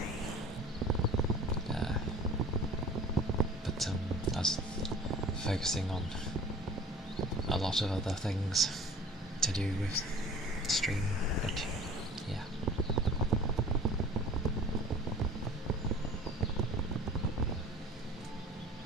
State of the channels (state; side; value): normal; both; correlation 0.45